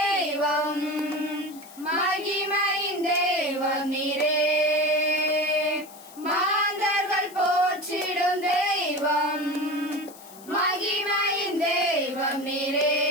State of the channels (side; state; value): left; noise; hiss, 20 dB below the sound